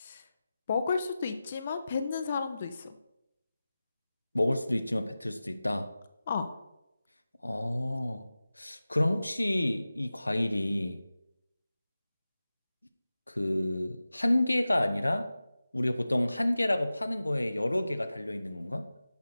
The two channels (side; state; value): both; inverted; correlation -0.95